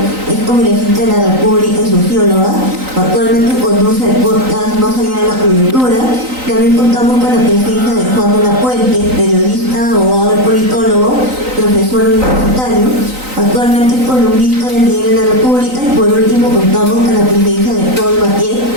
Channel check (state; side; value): late; left; 3.9 ms